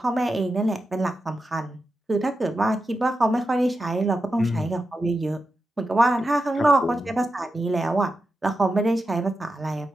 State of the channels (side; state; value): both; normal; correlation 0.89